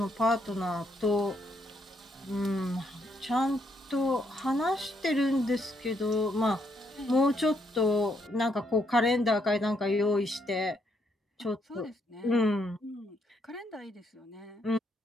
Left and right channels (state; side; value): normal; both; correlation 0.74